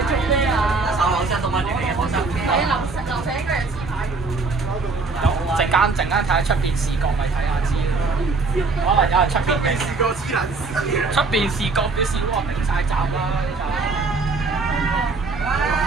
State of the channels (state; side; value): quieter; left; 4.0 dB